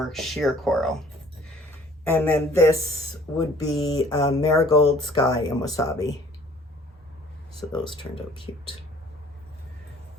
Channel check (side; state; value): both; normal; correlation 0.54